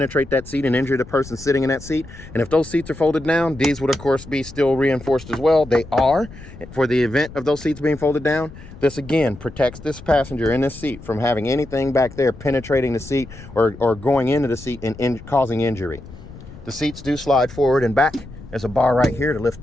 that seat and injure the person sitting in that seat. And if those seats are folded down, these would of course be still reinforced as well. They are. For the event of those seats being folded down, this again protects this passenger in this seat from having anything back there penetrating the seat or going into the seat and causing injury. The seats do slide forward and back. There's a bar right here to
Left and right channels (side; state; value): left; noise; rumble, 16 dB below the sound